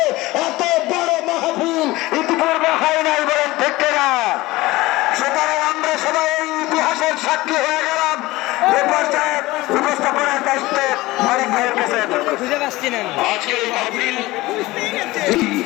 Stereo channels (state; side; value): quieter; right; 19.4 dB